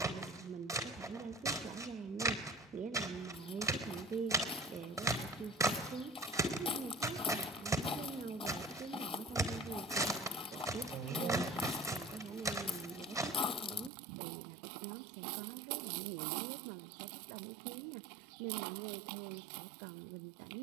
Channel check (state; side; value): drops out; left; at 13.9 s